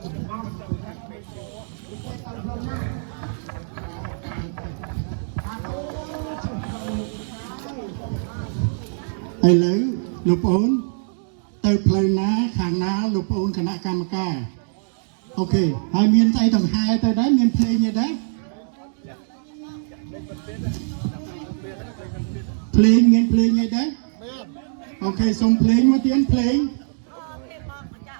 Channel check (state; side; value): silent; left; digital silence